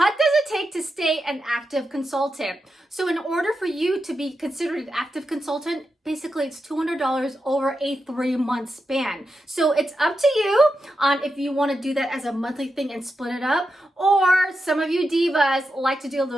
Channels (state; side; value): normal; both; correlation 0.88